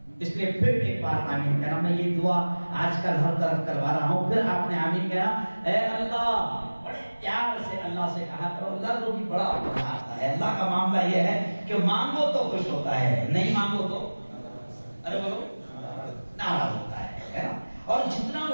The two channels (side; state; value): both; inverted; correlation -1.00